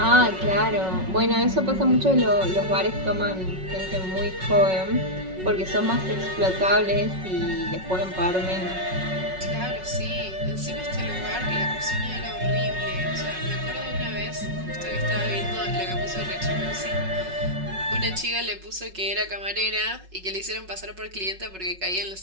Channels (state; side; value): late; left; 5.4 ms